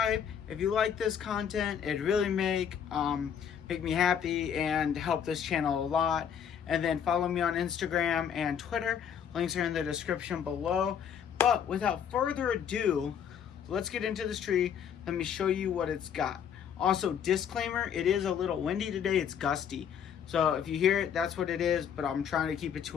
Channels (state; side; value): quieter; right; 8.2 dB